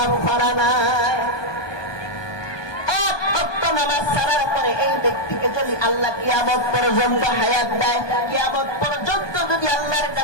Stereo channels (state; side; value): late; right; 1.2 ms